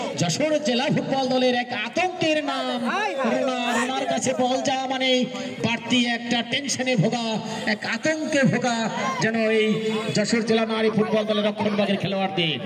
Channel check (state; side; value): identical; both; correlation 1.00